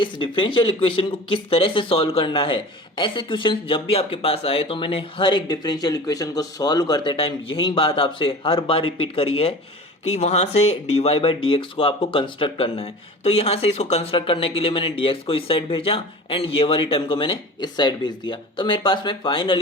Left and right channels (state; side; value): normal; both; correlation 0.37